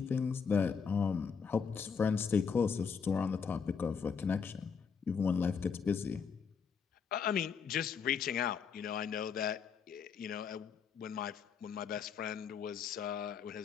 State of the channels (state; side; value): quieter; right; 6.2 dB